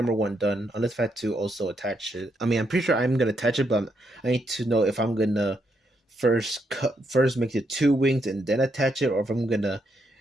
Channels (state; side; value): normal; both; correlation 0.78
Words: one done. Unless I had to also attach it. I mean, I'm pretty sure I'm gonna attach it, but I need to know if I'm gonna first make the two wings and then attach it, or if I'm gonna